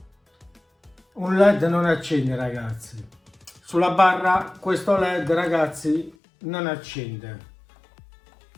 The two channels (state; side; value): drops out; right; at 6.2 s